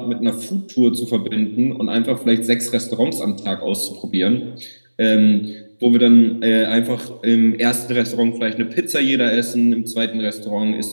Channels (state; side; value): inverted; both; correlation -1.00